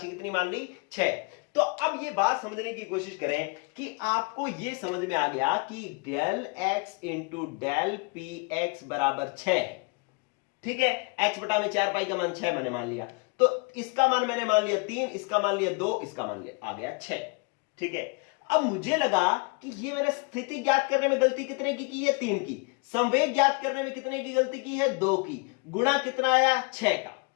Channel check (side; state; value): right; quieter; 31.8 dB